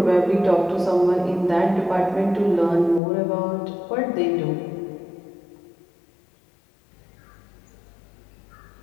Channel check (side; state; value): right; drops out; at 3.0 s